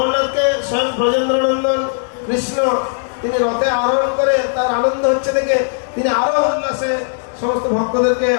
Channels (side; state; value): right; silent; digital silence